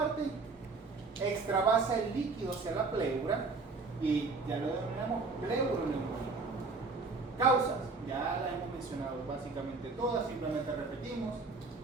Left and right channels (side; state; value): left; quieter; 4.0 dB